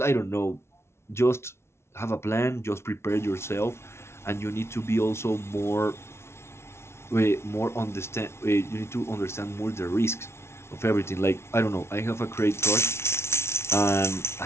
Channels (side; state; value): right; late; 0.13 ms